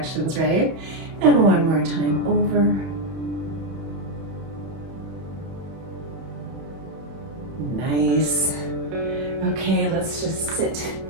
right? And one more time over. Nice. Okay, let's just sit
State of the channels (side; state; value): left; late; 31 ms